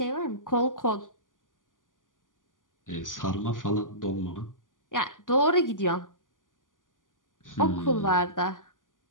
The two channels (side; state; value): right; late; 0.88 ms